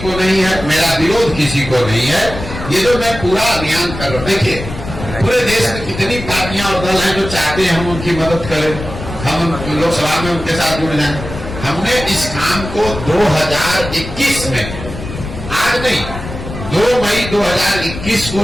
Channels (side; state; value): left; noise; rumble, 9 dB below the sound